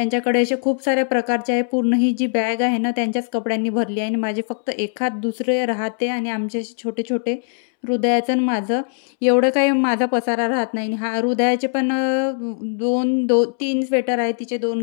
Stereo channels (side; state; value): right; silent; 65 dB below the other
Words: असे खूप साऱ्या प्रकारचे आहे. पूर्ण ही जी बॅग आहे ना त्यांच्याच कपड्यांनी भरली आहे आणि माझे फक्त एखाद दुसरे राहते आणि आमचे असे छोटे-छोटे हृदयाचं आणि माझं एवढं काही माझा पसारा राहत नाही. आणि हा हृदयाचे पण 3 स्वेटर आहे. तिचे 2